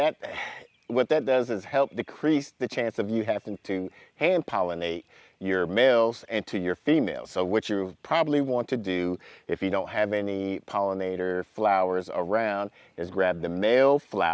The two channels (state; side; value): identical; both; correlation 1.00